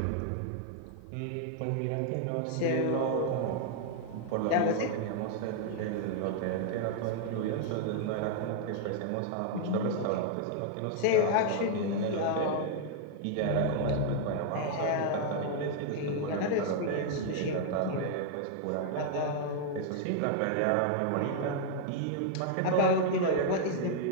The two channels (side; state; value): both; different; correlation 0.00